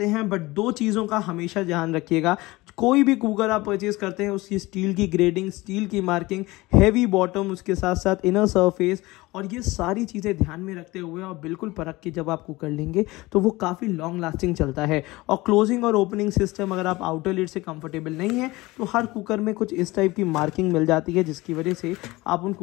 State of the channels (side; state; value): right; quieter; 20.7 dB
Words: हैं। बट दो चीज़ों का हमेशा ध्यान रखिएगा, कोई भी कुकर आप परचेज करते हैं उसकी स्टील की ग्रेडिंग, स्टील की मार्किंग, हैवी बॉटम, उसके साथ साथ इनर सरफेस और ये सारी चीज़ें ध्यान में रखते हुए और बिल्कुल परख के जब आप कुकर लेंगे तो वो काफ़ी लॉन्ग लास्टिंग चलता है। और क्लोजिंग और ओपनिंग सिस्टम अगर आप आउटर लिड से कंफर्टेबल नहीं है तो हर कुकर में कुछ इस टाइप की मार्किंग मिल जाती है जिसकी वजह से आप उन